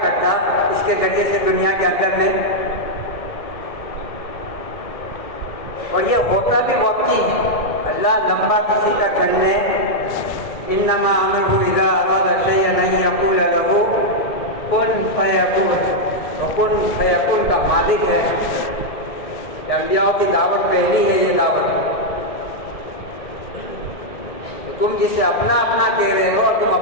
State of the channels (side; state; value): right; late; 1.7 ms